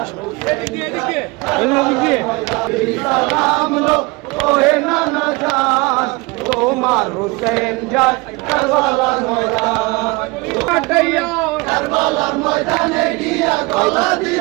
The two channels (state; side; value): quieter; left; 25.2 dB